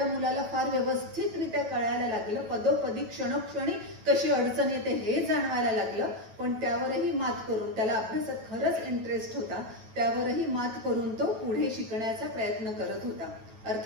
मुलाला फार व्यवस्थितरित्या कळायला लागलं. पदोपदी क्षणोक्षणी कशी अडचण येते हे जाणवायला लागलं. पण त्यावरही मात करून, त्याला अभ्यासात खरंच इंटरेस्ट होता, त्यावरही मात करून तो पुढे शिकण्याचा प्रयत्न करत होता.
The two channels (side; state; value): left; late; 9.1 ms